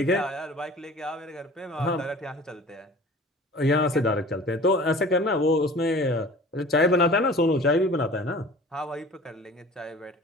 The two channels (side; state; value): both; normal; correlation 0.43